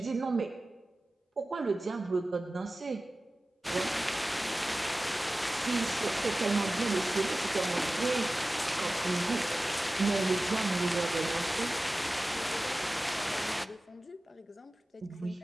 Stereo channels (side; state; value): both; normal; correlation 0.96